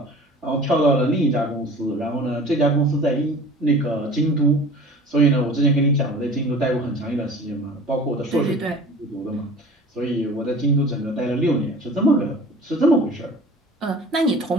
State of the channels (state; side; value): normal; both; correlation 0.42